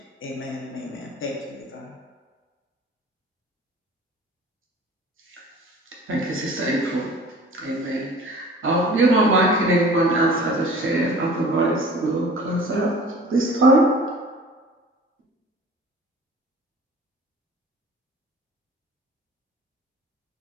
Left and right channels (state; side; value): normal; both; correlation 0.45